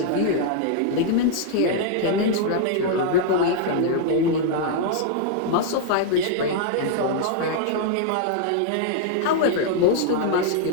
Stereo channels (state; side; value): different; both; correlation -0.01